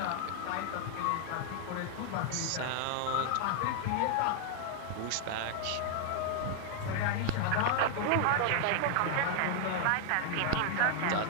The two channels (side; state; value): both; different; correlation 0.00